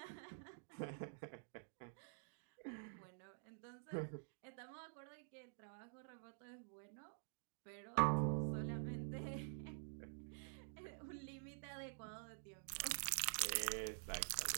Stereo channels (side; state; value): left; silent; digital silence